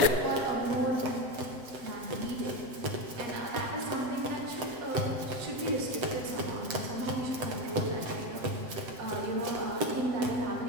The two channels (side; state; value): left; late; 7.9 ms